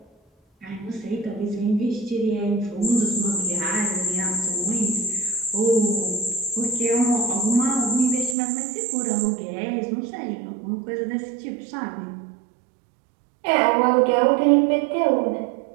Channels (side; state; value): left; drops out; at 8.3 s